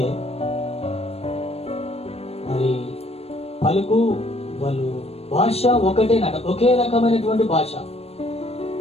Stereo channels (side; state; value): right; late; 0.29 ms